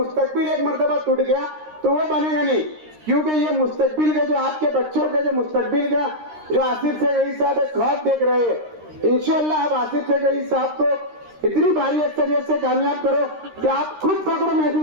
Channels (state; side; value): late; left; 13 ms